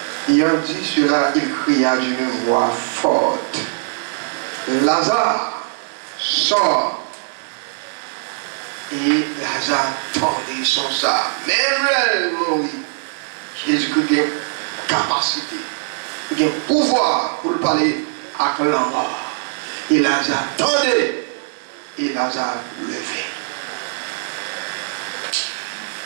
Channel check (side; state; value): left; silent; digital silence